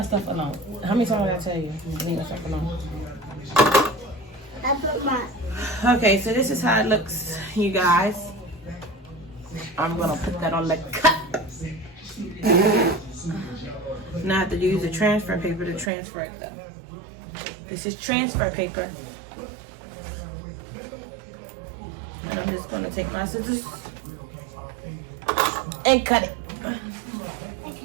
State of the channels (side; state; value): left; drops out; at 15.9 s